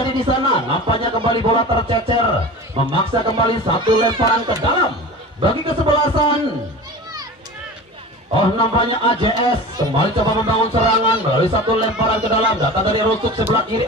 di sana. Nampaknya kembali bola tercecer, memaksa kembali satu lemparan ke dalam bagi kesebelasan. Oh, nampaknya AJS kembali coba membangun serangan melalui satu lemparan ke dalam. Datang dari rusuk sebelah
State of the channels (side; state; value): both; normal; correlation 0.34